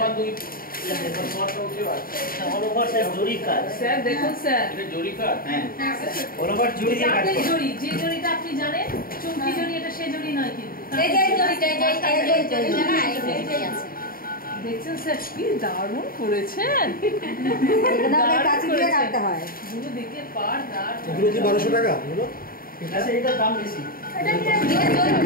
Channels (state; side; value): late; right; 0.42 ms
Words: 2 all over sir জরি কাজ। স্যার দেখুন স্যার এটা জরি কাজ। হ্যাঁ অল ওভার জরি দিয়ে কাজ আপনি করে। জরি, যে জরিটা আপনি জানেন চুমকি জরি, এটা সেই জরি নয় কিন্তু। এই যে জরিটা না এই জরিটাই আছে। দেখছেন স্যার কি দারুণ করেছেন। এটা আমরা কাছে দিয়ে কাটতে হয়। পুরো দিকে পার দাঁড়। এগুলো কি 1200 টাকা এগুলো? আচ্ছা এটার দাম বেশি।